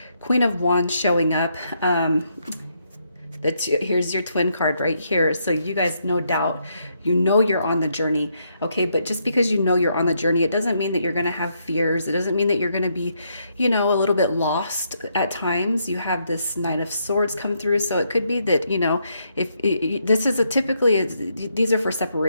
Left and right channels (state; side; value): inverted; both; correlation -0.76